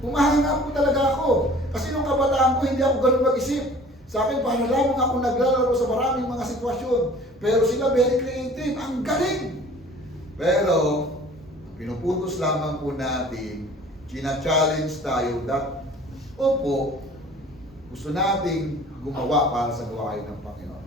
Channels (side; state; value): both; normal; correlation 0.48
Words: Umahanga po talaga ako. Kasi nung kabataan ko, hindi ako ganun mag-isip. Sa akin, paano lamang ako naglalaro sa maraming mga sitwasyon. Pero sila very creative, ang galing. Pero, pinuputos lamang po natin, china-challenge tayo that, opo, gusto nating gumawa para sa gawain ng Panginoon.